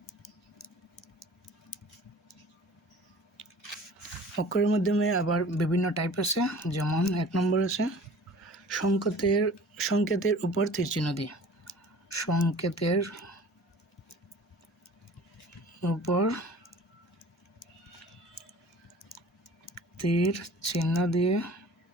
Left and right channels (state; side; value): normal; both; correlation 0.45